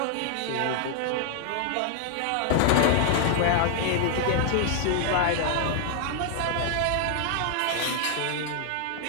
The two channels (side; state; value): both; different; correlation 0.00